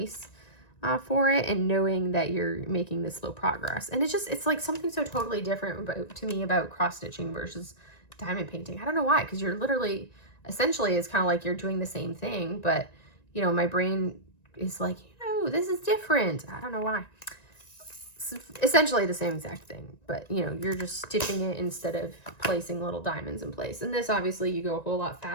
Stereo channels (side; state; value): right; late; 1.9 ms